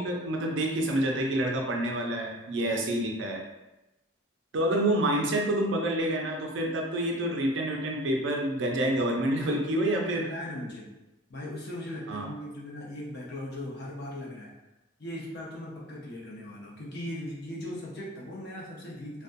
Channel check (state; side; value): normal; both; correlation 0.39